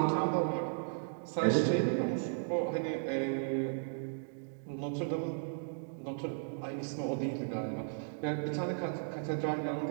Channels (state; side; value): silent; left; digital silence